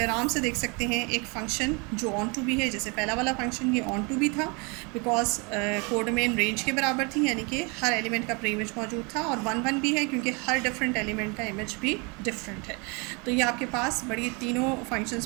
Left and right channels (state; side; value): quieter; left; 30.8 dB